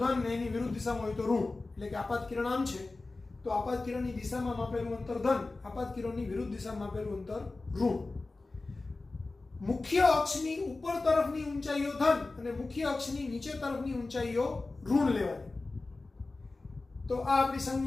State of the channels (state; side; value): quieter; right; 3.4 dB